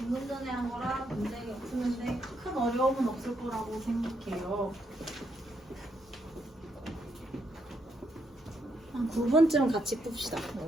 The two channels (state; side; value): normal; both; correlation 0.77